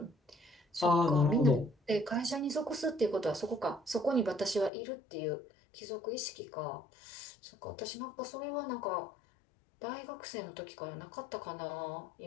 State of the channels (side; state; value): right; drops out; at 4.7 s